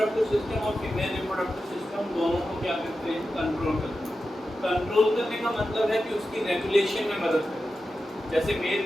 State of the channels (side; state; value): both; normal; correlation 0.91